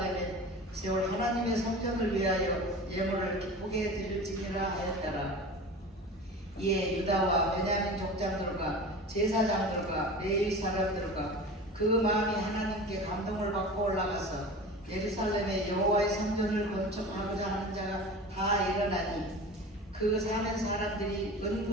세울 하나님의 성전을 위하여 예물을 기쁘게 드릴지니라 하였더라. 이에 유다와 베냐민 족장들과 제사장들과 레위 사람들과 그 마음이 하나님께 감동을 받고 올라가서 예루살렘에 여호와의 성전을 건축하고자 하는 자가 다 일어나니 그 사는 사람들이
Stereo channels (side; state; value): both; normal; correlation 0.35